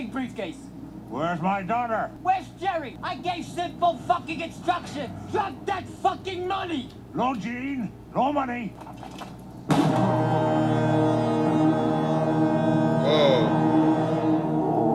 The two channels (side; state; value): both; identical; correlation 1.00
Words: briefcase. Where's my daughter? Where's Jerry? I gave simple fucking instructions. Drop that fucking money. No Gene. No money.